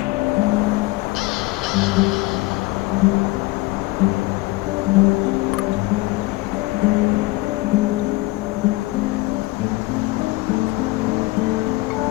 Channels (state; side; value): quieter; right; 21.3 dB